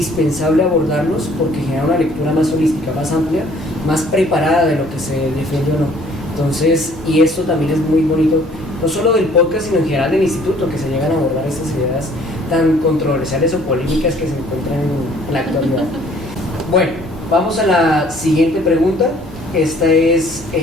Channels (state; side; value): normal; both; correlation 0.57